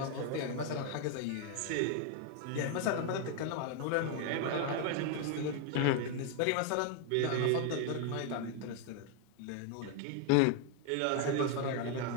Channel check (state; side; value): different; both; correlation 0.01